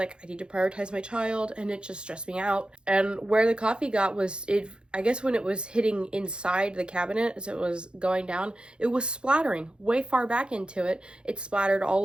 I need to prioritize my child, and it just stressed me out. And where the coffee got was, I guess when it was hitting inside the cabinet as it was going down, it was splattering way far back into it. It splattered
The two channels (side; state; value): left; late; 0.052 ms